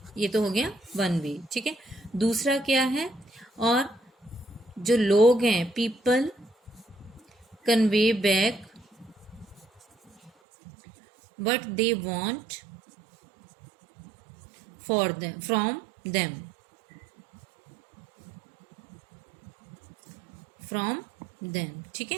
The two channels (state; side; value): drops out; left; at 10.3 s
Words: ये तो हो गया वन वे, ठीक है। दूसरा क्या है, और जो लोग हैं people convey back what they want for them from them, ठीक